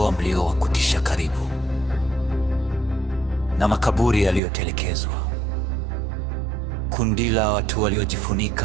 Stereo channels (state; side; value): drops out; left; at 4.4 s